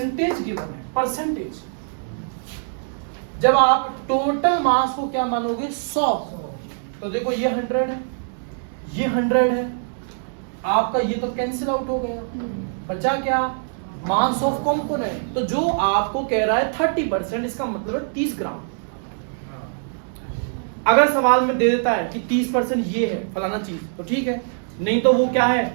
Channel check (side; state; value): left; silent; digital silence